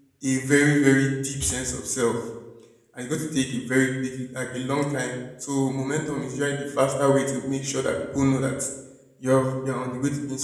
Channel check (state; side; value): identical; both; correlation 1.00